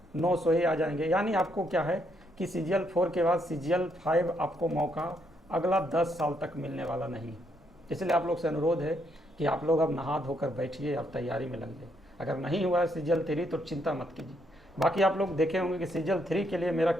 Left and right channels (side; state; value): both; normal; correlation 0.74